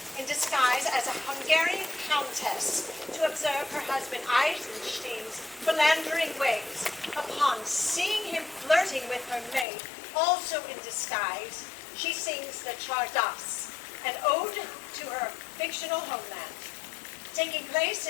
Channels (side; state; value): right; drops out; at 9.7 s